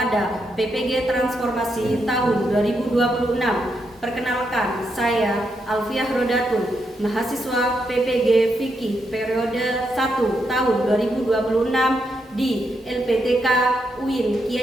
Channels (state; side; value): normal; both; correlation 0.81